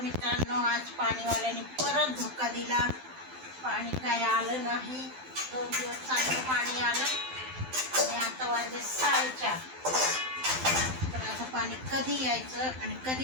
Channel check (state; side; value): late; left; 12 ms